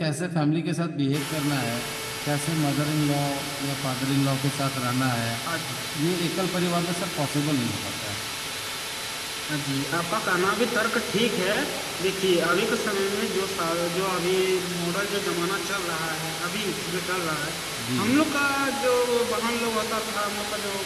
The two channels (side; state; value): both; identical; correlation 1.00